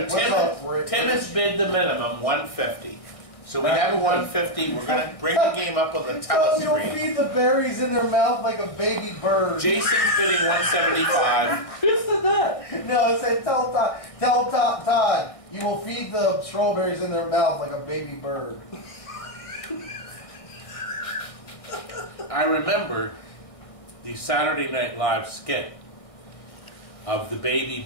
What's up, Rick? Tim has bid the minimum, 150. So we have a 150. We're gonna bring the game up on the You'll telescreen. feed the berries in their mouth like a baby bird. Jason's bidding 175. No, it said tell Todd, you will feed the strawberries in their mouth like a baby bird. I remember the Saturday Night Live skit of the baby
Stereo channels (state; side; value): late; right; 1.6 ms